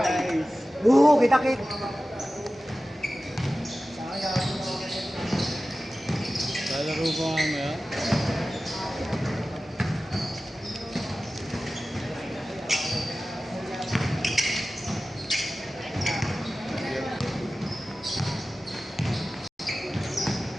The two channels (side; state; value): both; normal; correlation 0.95